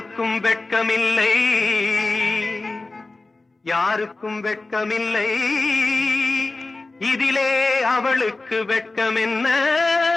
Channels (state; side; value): quieter; right; 3.3 dB